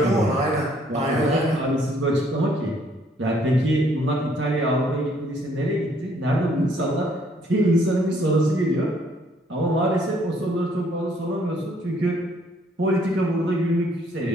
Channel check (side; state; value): both; normal; correlation 0.65